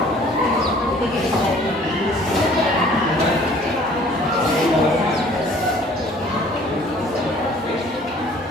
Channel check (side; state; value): both; normal; correlation 0.54